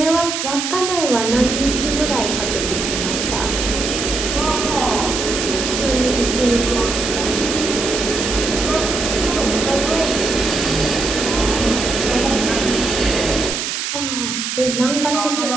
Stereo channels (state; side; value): noise; right; hiss, 3 dB below the sound